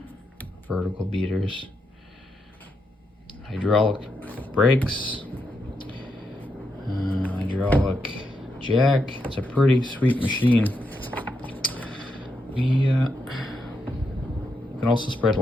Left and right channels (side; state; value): both; normal; correlation 0.82